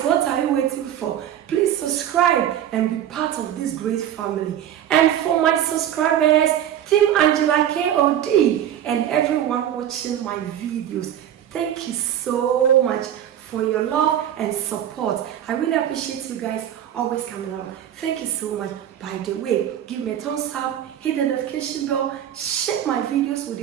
what are you waiting for? Please subscribe and be part of this great family. And for my subscribers, Team Angela KOD and everyone watching my videos, thank you so much for your love and support. I really appreciate you guys always coming out. Thank you so much. By the way, give me a thumbs up, hit the notification bell, share my videos with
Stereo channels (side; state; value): left; quieter; 10.7 dB